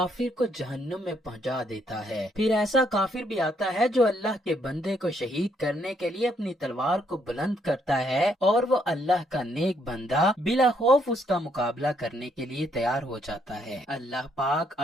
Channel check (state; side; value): normal; both; correlation 0.72